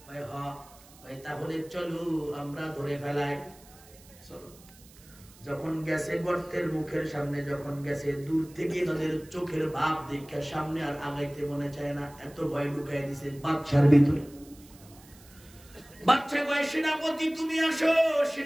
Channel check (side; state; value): right; noise; hiss, 24 dB below the sound